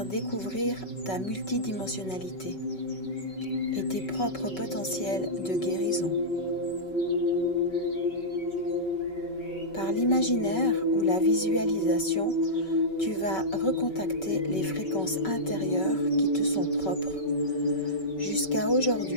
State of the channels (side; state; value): right; late; 5.3 ms